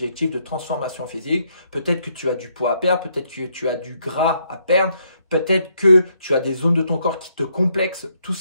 de transformation physique. Peut-être que tu as du poids à perdre, peut-être que tu as du gras à perdre, peut-être que tu as des zones de ton corps qui te complexent, tout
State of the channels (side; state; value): both; inverted; correlation -0.73